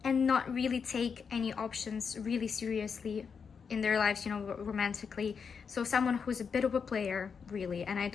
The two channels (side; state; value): right; quieter; 6.1 dB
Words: and not really take any options really seriously in their lives, you know, romantically. So someone who's a bit of a player, really, and I